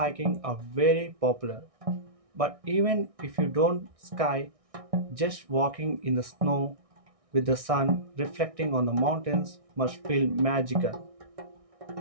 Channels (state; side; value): late; left; 1.6 ms